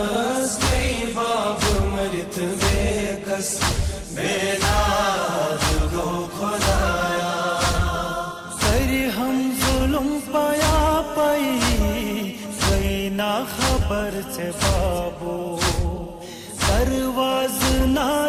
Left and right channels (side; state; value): both; identical; correlation 1.00